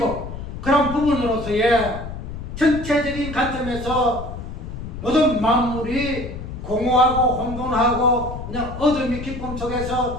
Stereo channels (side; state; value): left; noise; rumble, 9 dB below the sound